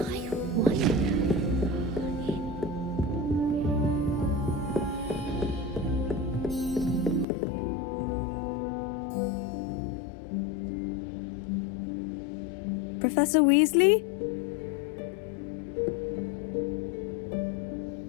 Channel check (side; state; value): right; drops out; at 7.2 s